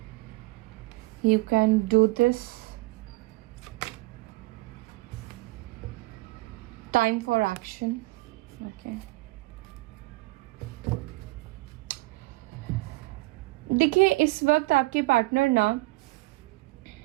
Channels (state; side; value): quieter; left; 22.6 dB